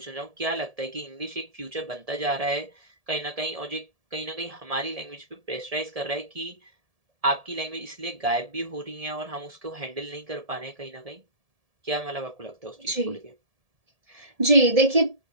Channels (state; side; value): late; left; 1.7 ms